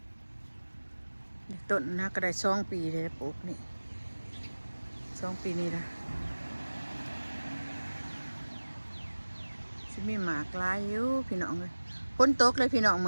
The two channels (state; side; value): inverted; both; correlation -1.00